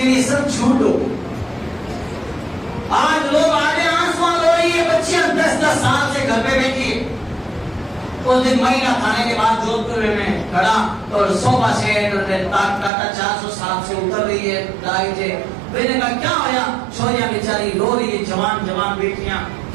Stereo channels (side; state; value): left; drops out; at 12.9 s